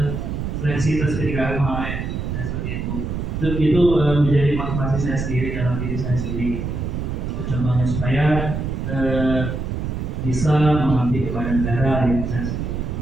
seleksi tes PDKM kemarin, ya seperti itu. Itu menjadi motivasi saya sendiri dalam diri saya sendiri. Itu contohnya supaya bisa mengabdi kepada negara yang saya sendiri.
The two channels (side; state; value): right; noise; rumble, 3 dB below the sound